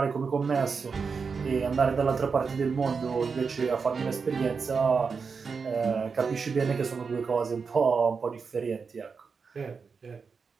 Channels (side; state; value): left; quieter; 5.3 dB